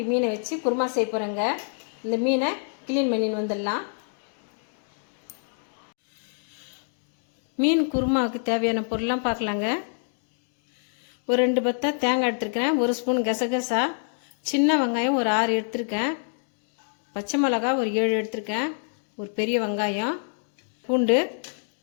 மீனை வச்சு குருமா செய்ய போகிறேங்க. இந்த மீனை க்ளீன் பண்ணின்னு வந்துடலாம். மீன் குருமாவுக்கு தேவையான பொருள்லாம் பார்க்கலாங்க. ஒரு 2 பத்தை தேங்காய் எடுத்துருக்கேன், 1 ஸ்பூன் கசகசா, சின்ன வெங்காயம் ஒரு 6 எடுத்துருக்கேன், பச்சை மிளகாய் ஒரு 7 எடுத்துருக்கேன், ஒரு பெரிய வெங்காயம், பூண்டு,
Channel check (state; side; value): silent; right; 61 dB below the other